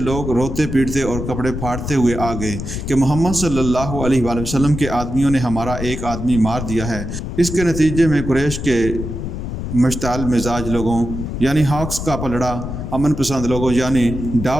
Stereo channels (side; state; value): left; noise; rumble, 6 dB below the sound